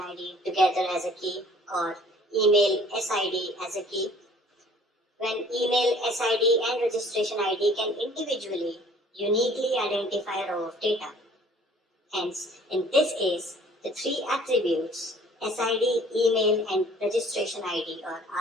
together as a key, or email SID as a key, when email SID and registration ID can individually, uniquely identify a row of data. Hence, in this case, the 3 attributes, SID, email, and registration ID or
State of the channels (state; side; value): normal; both; correlation 0.54